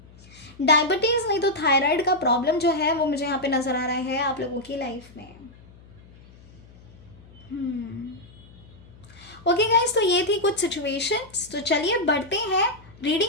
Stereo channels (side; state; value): left; noise; hum, 23 dB below the sound